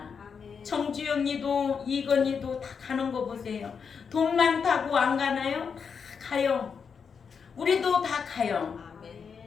정주영이도 이건희도 다 가는 거 보세요. 돈 많다고 안 가나요? 다 가요. 우리도 다 가요.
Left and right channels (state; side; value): quieter; right; 6.2 dB